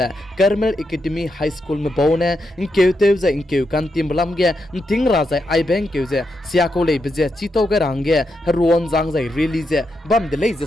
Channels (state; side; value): normal; both; correlation 0.84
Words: Carmel Academy High School me bone in keute za in keu kan timbalam ge ting raja ai bank keu je siako le beje chito ge range ruon jang jai release bam de le je